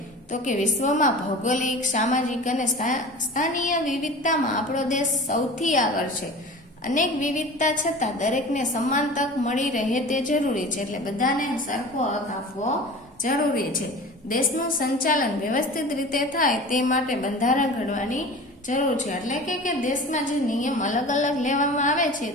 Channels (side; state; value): both; normal; correlation 0.37